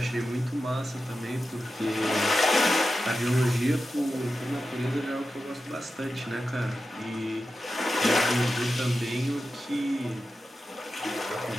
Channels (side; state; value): both; normal; correlation 0.91